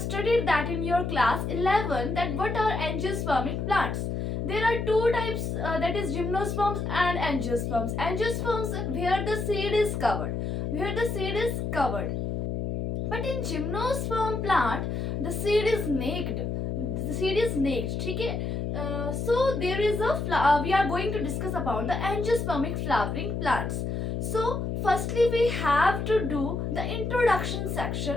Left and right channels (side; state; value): left; noise; hum, 2 dB below the sound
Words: that in your class 11, that what are angiospermic plants. There are two types, that is gymnosperms and angiosperms. Angiosperms where the seed is covered. But in gymnosperm plant, the seed is naked. ठीक है? So there is we are going to discuss about the angiospermic flowering plants. So firstly we have to do the introduction